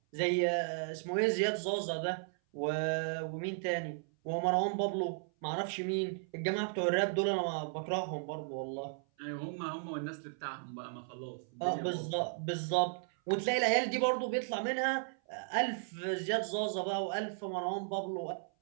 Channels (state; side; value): silent; left; 54 dB below the other